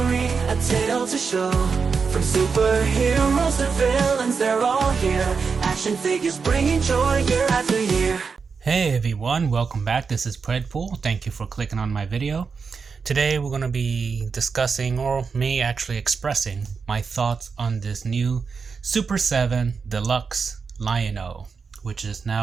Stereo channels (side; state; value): left; quieter; 5.3 dB